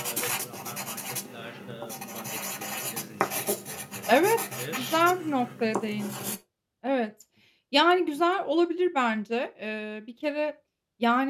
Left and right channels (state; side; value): identical; both; correlation 1.00